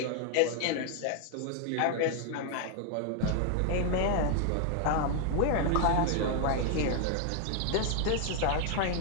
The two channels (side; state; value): both; different; correlation 0.00